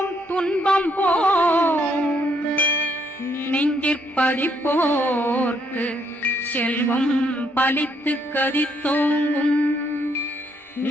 துன்பம் போம் நெஞ்சிற்பதிப்போர்க்கு செல்வம் பலித்து கதித்தோங்கும்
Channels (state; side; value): normal; both; correlation 0.72